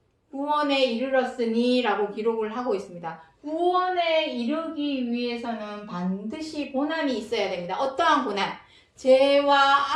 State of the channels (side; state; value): both; identical; correlation 1.00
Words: 구원에 이르렀으니 라고 기록을 하고 있습니다. 구원에 이르기 위해서는 반드시 고난이 있어야 됩니다. 어떠한 고난? 죄와